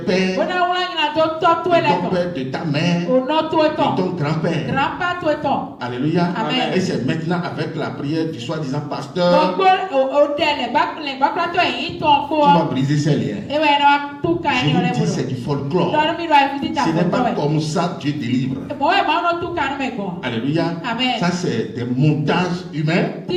de ton père, de ta mère, de ton grand-père. Alléluia. Amen. Et c'est maintenant avec la prière du soi-disant pasteur tu vas briser ces liens. Je vous dis, c'est du folklore. Ce n'est pas comme ça Dieu délivre. Alléluia. Amen. Ça, c'est des montages humains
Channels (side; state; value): both; identical; correlation 1.00